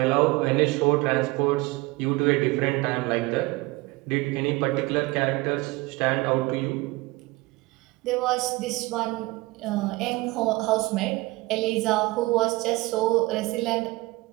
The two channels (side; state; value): left; quieter; 22.5 dB